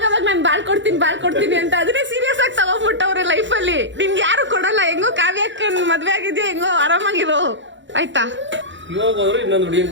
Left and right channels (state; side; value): late; left; 0.54 ms